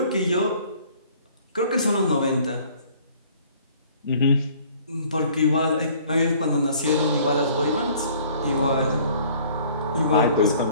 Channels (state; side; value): inverted; both; correlation -0.55